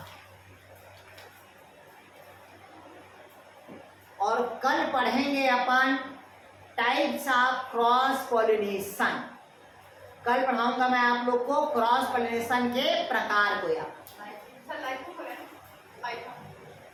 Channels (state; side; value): identical; both; correlation 1.00